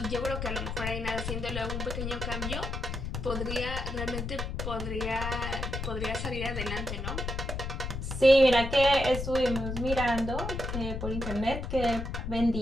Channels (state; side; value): noise; left; rumble, 4 dB below the sound